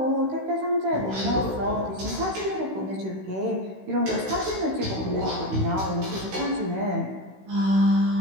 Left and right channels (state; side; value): late; left; 16 ms